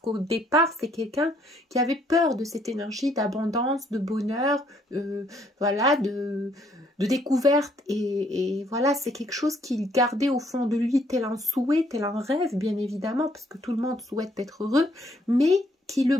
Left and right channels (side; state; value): both; normal; correlation 0.67